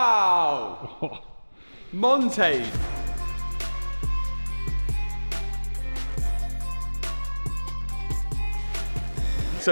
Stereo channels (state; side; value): inverted; both; correlation -1.00